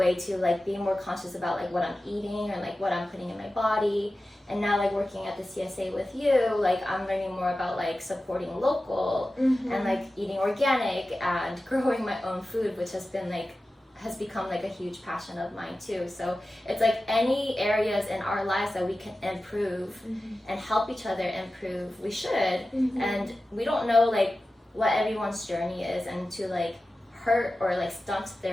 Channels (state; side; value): normal; both; correlation 0.94